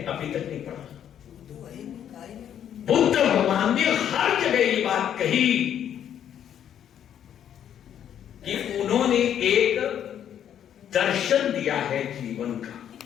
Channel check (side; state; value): right; quieter; 9.7 dB